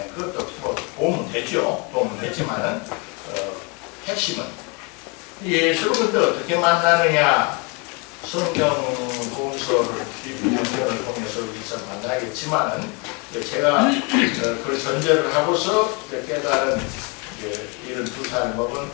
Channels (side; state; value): right; quieter; 31.5 dB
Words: 그것도 도움은 되죠. 도움은 되지만은 핵심은 예수를 근데 어떻게 만나느냐. 성경 공서를 연결을 통해서 여기서 만나겠지만은 제가 그 전제를 하고서 깨달은 72살 먹은